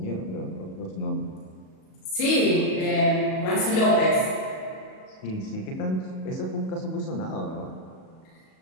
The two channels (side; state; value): right; late; 37 ms